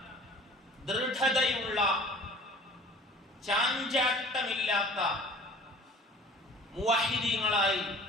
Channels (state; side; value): normal; both; correlation 0.47